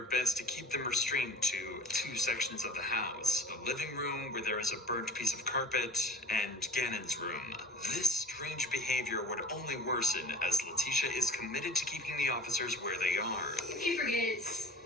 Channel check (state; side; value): normal; both; correlation 0.43